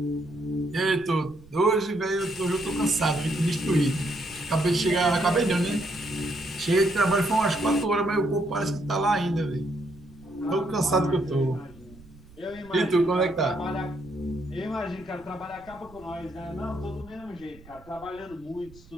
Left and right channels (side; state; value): right; noise; rumble, 23 dB below the sound